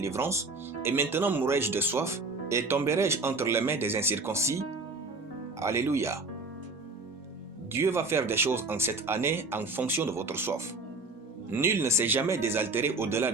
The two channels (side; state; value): left; quieter; 3.3 dB